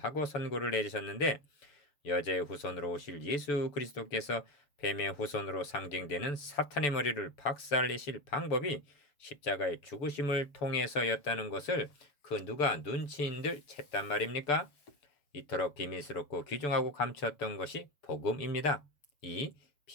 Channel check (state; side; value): late; right; 6.9 ms